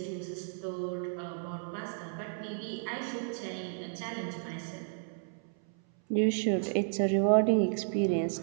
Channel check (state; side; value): silent; left; 56 dB below the other